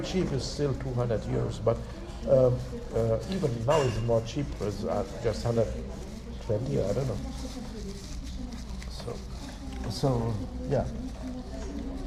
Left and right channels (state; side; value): identical; both; correlation 1.00